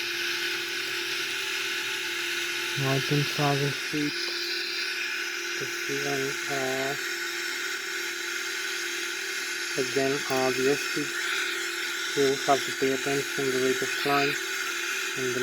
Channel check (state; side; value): identical; both; correlation 1.00